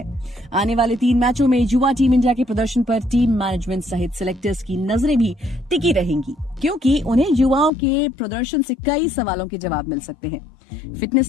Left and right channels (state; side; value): drops out; right; at 7.7 s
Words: आने वाले 3 मैचों में युवा टीम इंडिया के प्रदर्शन पर टीम मैनेजमेंट सहित सिलेक्टर्स की नजरें भी टिकी रहेंगी, क्योंकि उन्हें युवाओं के प्रदर्शन से कई सवालों के जवाब मिल सकते हैं।